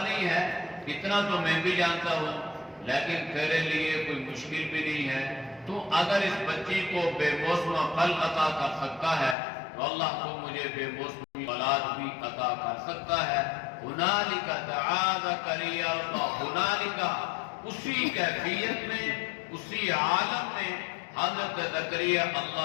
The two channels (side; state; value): right; drops out; at 9.3 s